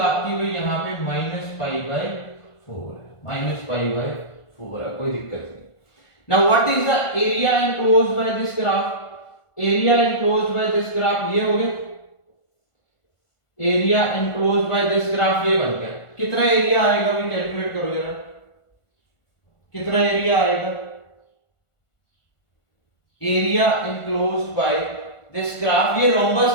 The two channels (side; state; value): right; late; 1.5 ms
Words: हुई यहाँ पे -पाई/4 है, -पाई/4 है, कोई दिक्कत नहीं। Now what is the area enclosed by this graph, area enclosed by this graph ये हो गया, area enclosed by this graph ये बन गया। कितना एरिया आएगा भाई कैलकुलेट करो जरा, कितना एरिया आएगा, area enclosed by this graph, ये